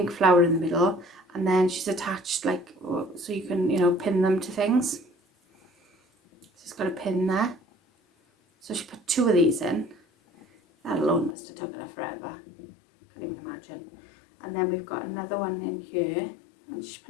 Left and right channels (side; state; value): right; drops out; at 11.4 s